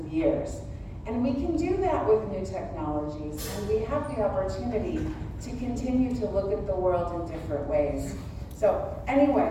years. And we can do that with new technologies, and we have the opportunity to continue to look at the world in different ways. So anyway,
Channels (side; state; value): both; identical; correlation 1.00